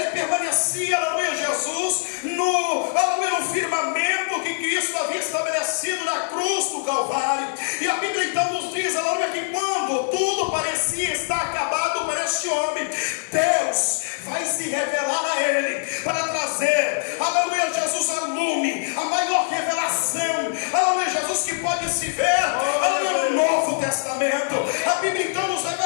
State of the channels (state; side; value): silent; right; 63 dB below the other